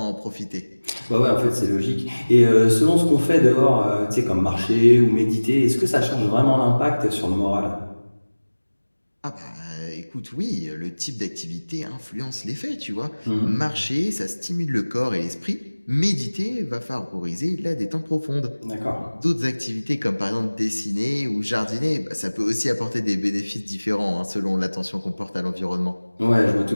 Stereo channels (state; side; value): inverted; both; correlation -1.00